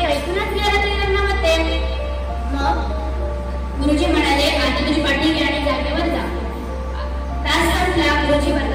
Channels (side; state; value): both; identical; correlation 1.00